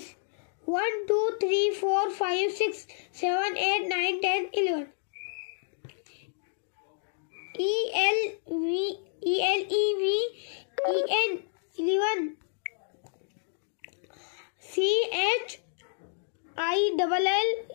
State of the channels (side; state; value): right; silent; digital silence